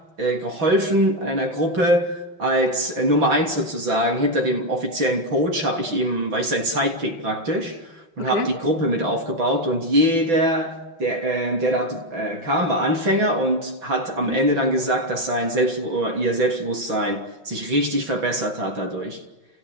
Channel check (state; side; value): late; left; 6.0 ms